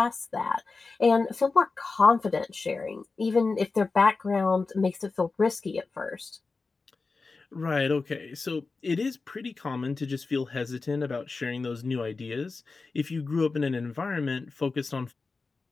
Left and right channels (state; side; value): quieter; right; 4.1 dB